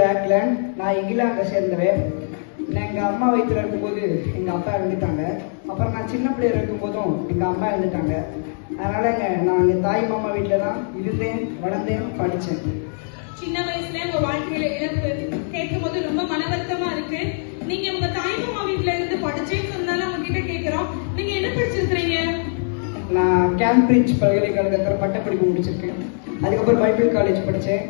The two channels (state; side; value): silent; right; digital silence